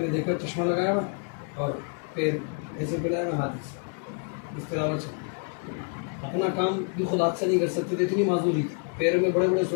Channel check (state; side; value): quieter; right; 40.0 dB